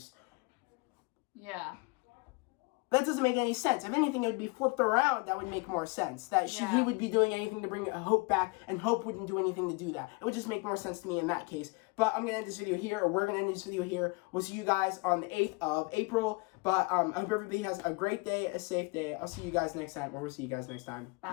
Yeah. That doesn't make any sense. If anything, it would be flipped around. That would make more sense. That he would be doing anything to bring Hope back, and Hope wouldn't do anything to do that. It would just make more sense to me in that case. But I'm going to end this video here, or we're going to end this video here. We'll see you guys on the 8th of April. But I hope everybody has a great day, a safe day. I'll see you guys next time, or we'll see you guys next time.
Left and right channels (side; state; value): right; quieter; 28.0 dB